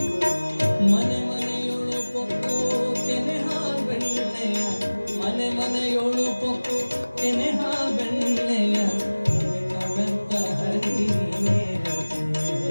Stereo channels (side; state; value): both; inverted; correlation -1.00